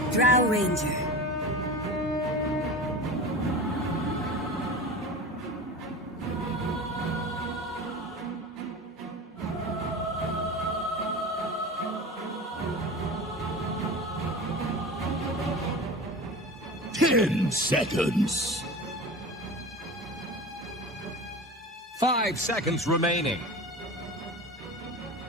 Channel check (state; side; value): normal; both; correlation 0.32